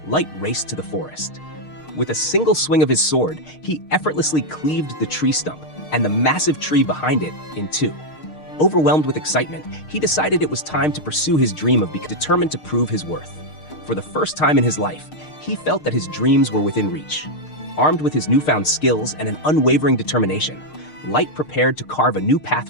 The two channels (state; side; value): late; right; 6.5 ms